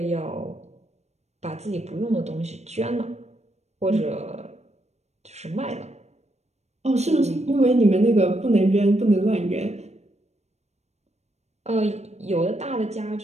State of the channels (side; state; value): left; late; 0.32 ms